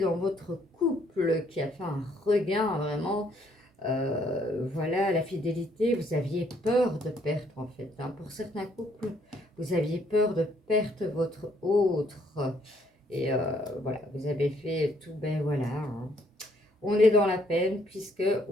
dans votre couple qui a fait un regain vraiment. Voilà, la fidélité, vous aviez peur de perdre en fait. Hein. Pour certains couples, vous aviez peur de perdre votre autre. Et voilà, vous avez fait tout, voilà. Hein. On est dans la peine puisque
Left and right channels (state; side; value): normal; both; correlation 0.68